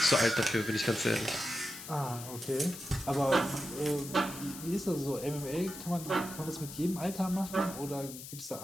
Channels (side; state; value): left; noise; hiss, 12 dB below the sound